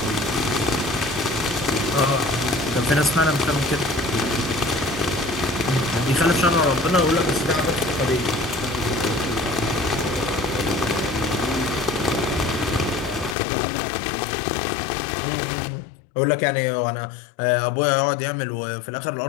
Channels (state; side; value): drops out; right; at 13.4 s